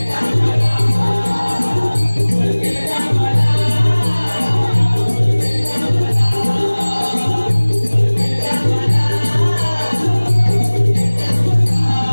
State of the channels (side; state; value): both; inverted; correlation -1.00